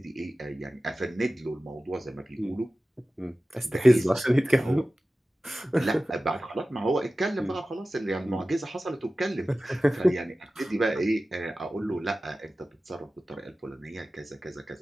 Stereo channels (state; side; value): normal; both; correlation 0.96